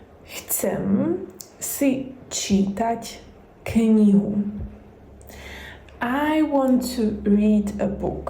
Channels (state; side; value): identical; both; correlation 1.00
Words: Chcem si čítať knihu. I want to read a